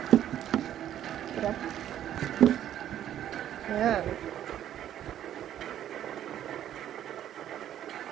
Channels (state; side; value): quieter; left; 11.2 dB